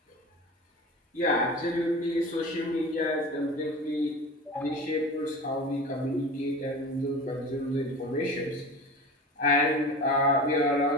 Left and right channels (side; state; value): both; normal; correlation 0.33